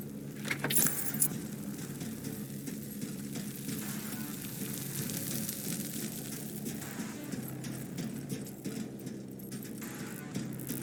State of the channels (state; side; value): identical; both; correlation 1.00